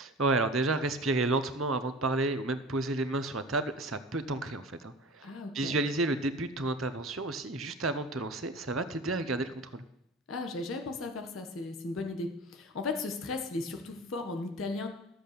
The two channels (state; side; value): normal; both; correlation 0.37